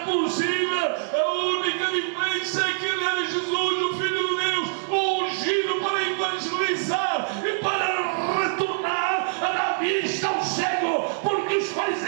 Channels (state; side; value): silent; left; digital silence